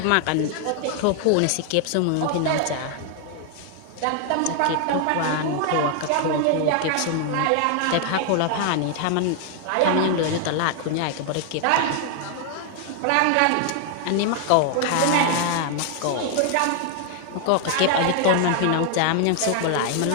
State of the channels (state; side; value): different; both; correlation 0.00